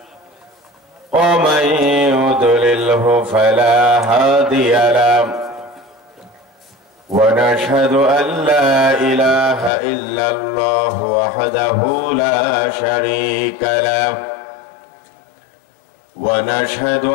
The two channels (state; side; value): drops out; right; at 9.7 s